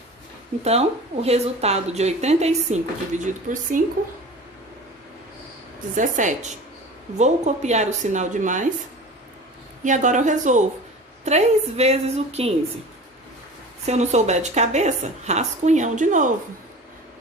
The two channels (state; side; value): normal; both; correlation 0.37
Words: Então, o resultado de 85 dividido por 5, 17. Vou copiar o sinal de mais. E agora eu resolvo. 3 vezes o 15. Se eu não souber de cabeça, rascunhão de novo.